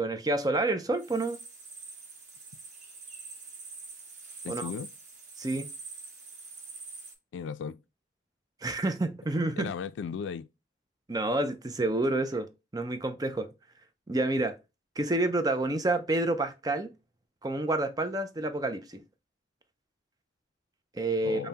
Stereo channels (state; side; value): normal; both; correlation 0.57